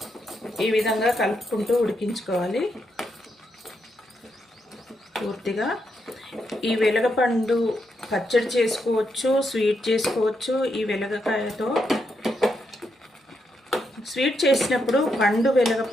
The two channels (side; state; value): both; normal; correlation 0.81